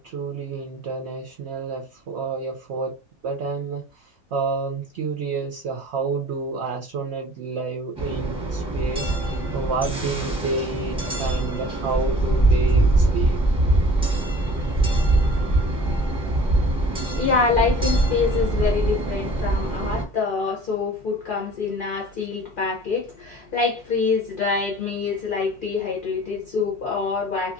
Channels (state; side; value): normal; both; correlation 0.47